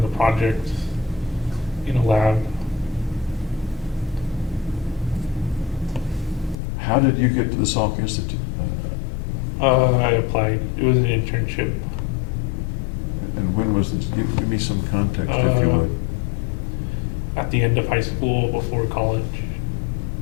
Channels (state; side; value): drops out; right; at 6.6 s